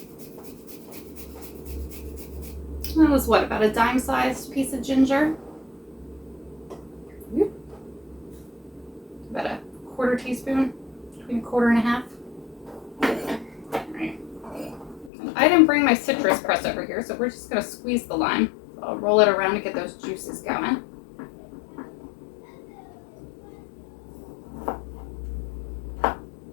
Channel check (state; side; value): drops out; right; at 15.1 s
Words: That was what, about a dime-sized piece of ginger? About a 1/4 teaspoon, between 1/4 and 1/2. Right. I didn't bring my citrus press over here, so we're just going to squeeze the lime. So I'll roll it around to get those juices going.